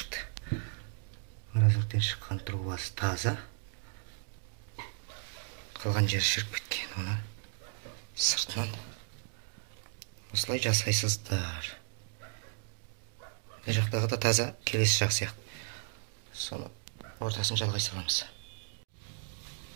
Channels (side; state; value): left; silent; 55 dB below the other